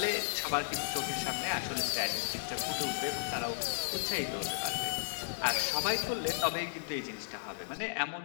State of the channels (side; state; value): right; silent; digital silence